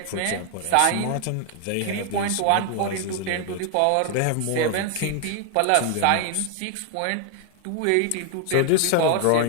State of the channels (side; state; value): both; different; correlation 0.00